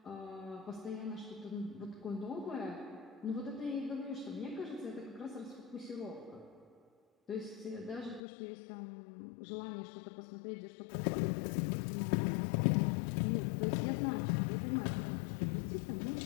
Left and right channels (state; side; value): drops out; right; at 8.2 s